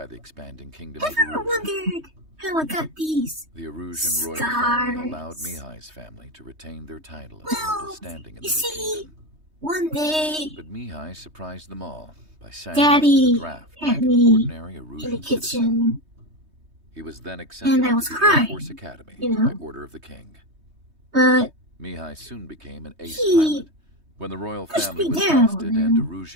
the expanding kingdom I of never Erusia. wondered how I got these. The Erusian royal family allowed Scars. Mihai's family to retain their title of Well, noble standing in the you new see, kingdom. one day, But Mihai surprised them all by signing Daddy up for the draft had like an me ordinary in the Erusian citizen. kitchen, He was then accepted and I into was the Air crying, Force Academy you know. by order of the king. but Mihai soon became an ace he pilot. When the royal pushed family me was down ousted and and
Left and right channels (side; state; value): left; late; 3.2 ms